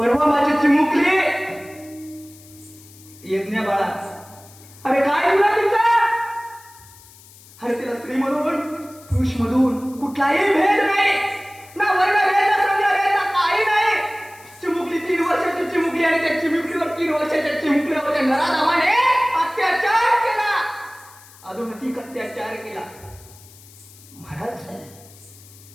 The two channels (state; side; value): noise; left; hiss, 23 dB below the sound